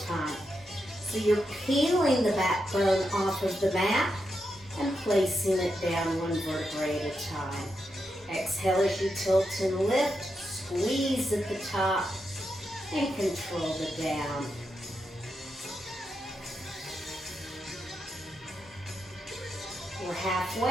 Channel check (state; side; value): normal; both; correlation 0.85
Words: time. So you're peeling the backbone off of the mat and placing it down one vertebrae at a time. Exhale as you tilt and lift. Squeeze at the top and control the down. We're